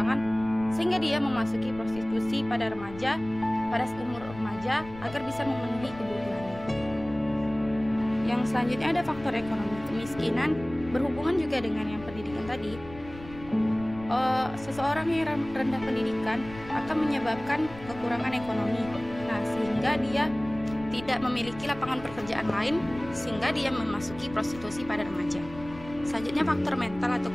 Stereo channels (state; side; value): noise; left; rumble, 16 dB below the sound